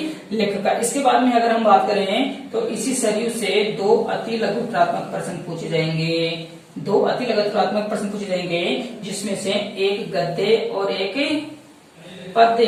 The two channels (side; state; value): both; identical; correlation 1.00